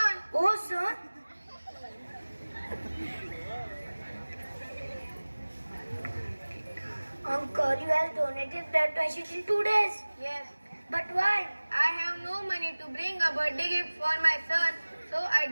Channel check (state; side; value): inverted; both; correlation -1.00